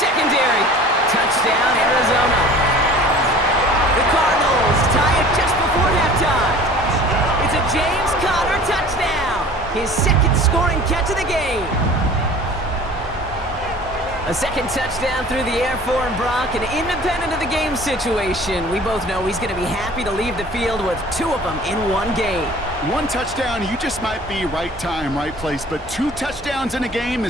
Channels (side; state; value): both; normal; correlation 0.45